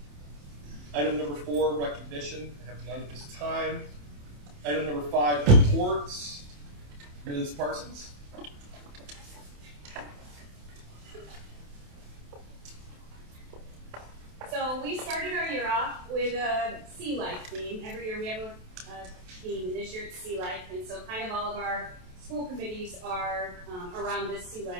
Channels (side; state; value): left; late; 28 ms